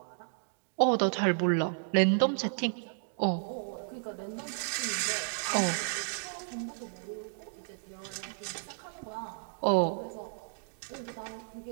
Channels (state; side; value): silent; left; digital silence